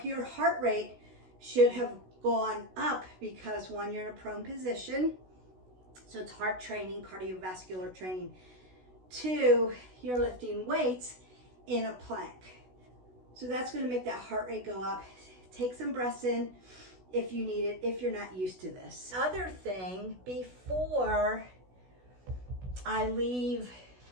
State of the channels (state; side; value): late; left; 16 ms